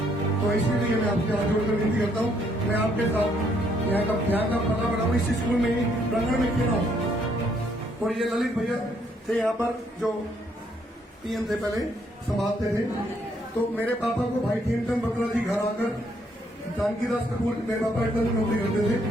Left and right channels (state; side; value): normal; both; correlation 0.70